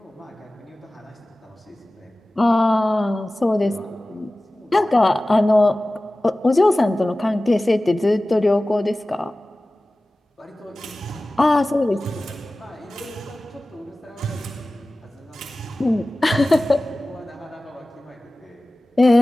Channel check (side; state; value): both; normal; correlation 0.97